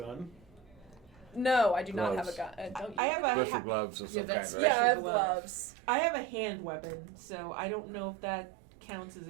No, I do not have a Gloves. gun. Don't you? I have a Special gloves or Yeah, something. that's- right? Yeah, I have glove. gloves. I have a hand weapon, so I don't know if that counts as a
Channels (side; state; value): left; drops out; at 3.0 s